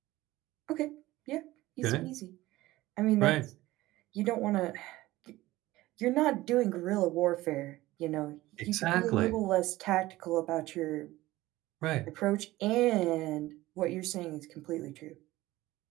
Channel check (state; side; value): quieter; left; 17.6 dB